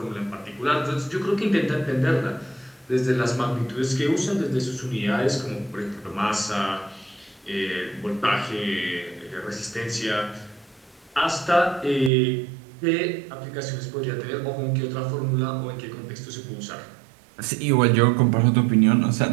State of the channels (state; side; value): drops out; left; at 12.1 s